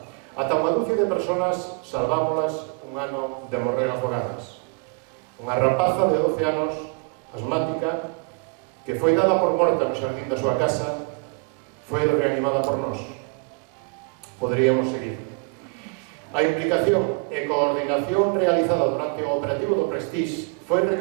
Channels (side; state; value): left; quieter; 36.0 dB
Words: Ata unha dúcia de persoas salvámolas un ano de morrer afogadas. Unha rapaza de 12 anos, asmática, que foi dada por morta no xardín da súa casa, foi reanimada por nós. Poderíamos seguir. A implicación e coordinación realizada durante o operativo do Prestige foi